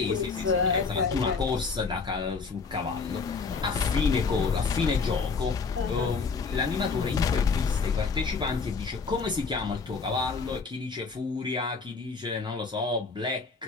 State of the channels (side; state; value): right; quieter; 4.8 dB